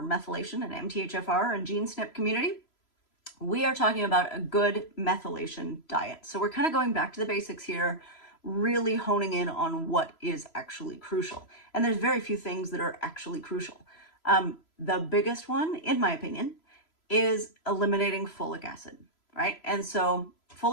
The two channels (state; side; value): late; right; 3.0 ms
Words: methylation and MTHFr and gene SNP community, we are talking about a good methylation diet. So we're kind of going back to the basics here, really honing in on what is actually crucial. And there's very few things that are actually crucial. The biggest one, in my opinion, is eliminating folic acid, right? And so